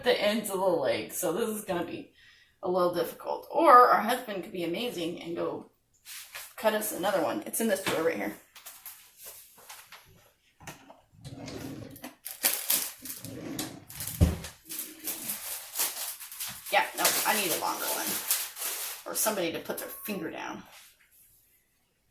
the ends of the legs, so this is going to be a little difficult. Or our husband could be amazing and go cut us another one. It's in this drawer right here. Yeah, no, I need a longer one. Or somebody to put their finger down.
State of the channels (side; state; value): both; identical; correlation 1.00